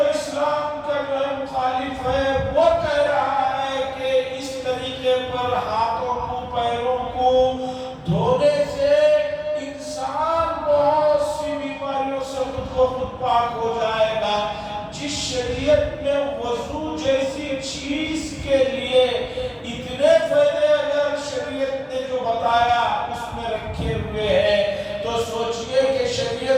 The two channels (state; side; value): identical; both; correlation 1.00